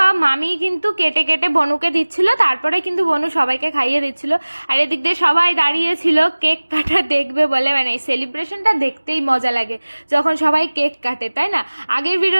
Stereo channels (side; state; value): both; inverted; correlation -1.00